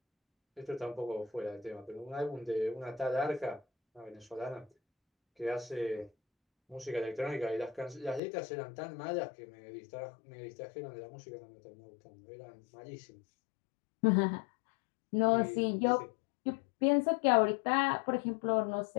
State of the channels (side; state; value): right; drops out; at 8.2 s